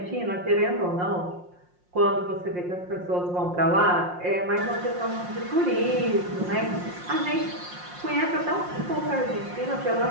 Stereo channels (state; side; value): late; left; 5.6 ms